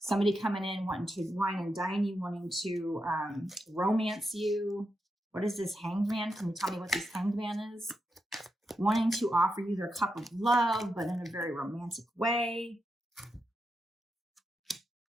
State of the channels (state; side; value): normal; both; correlation 0.85